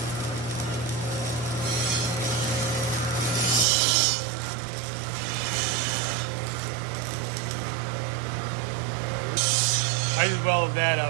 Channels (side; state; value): left; drops out; at 3.7 s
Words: I just welded that